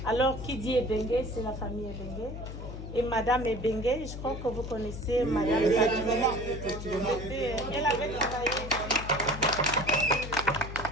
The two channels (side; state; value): left; noise; hum, 8 dB below the sound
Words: Alors, qui dit Ebengue, c'est la famille Ebengue. Et Madame Ebengue, je crois que vous connaissez Madame Sadiboma. Elle avait travaillé.